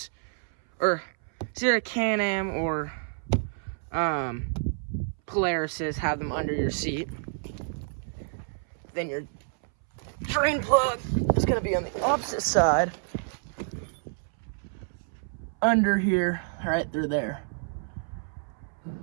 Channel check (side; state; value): left; silent; 59 dB below the other